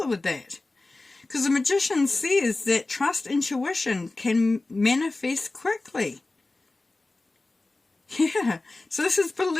with that? Because the Magician says that trust intuition can manifest quickly. Yeah, so this is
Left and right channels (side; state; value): right; quieter; 3.2 dB